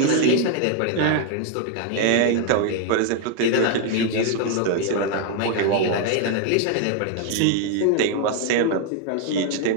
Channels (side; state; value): both; different; correlation 0.01